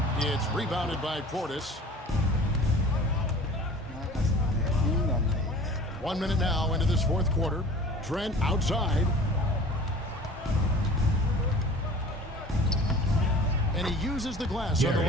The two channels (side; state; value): both; normal; correlation 0.43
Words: It's rebounded by Portis. 1 minute now into this fourth quarter. Trent outside. And he uses the glass on the